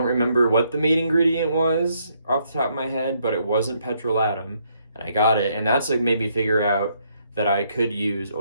remember what the main ingredient was off the top of my head, but it wasn't petrolatum, and I got it, and that's like made me figure out that I could use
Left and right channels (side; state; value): both; inverted; correlation -0.73